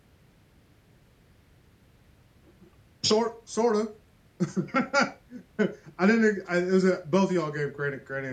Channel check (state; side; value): identical; both; correlation 1.00